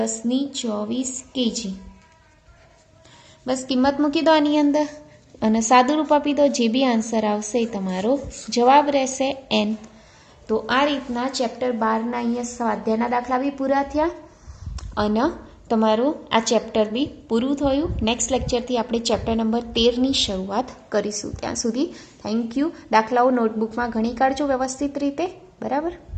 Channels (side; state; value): both; identical; correlation 1.00